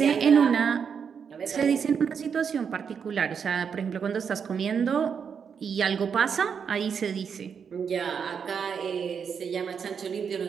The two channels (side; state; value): left; quieter; 6.8 dB